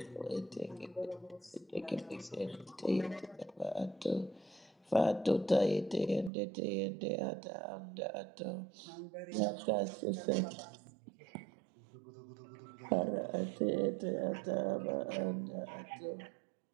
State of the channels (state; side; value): drops out; left; at 6.3 s